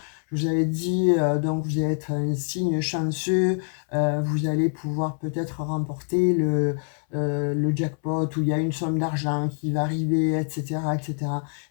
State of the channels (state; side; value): silent; right; 61 dB below the other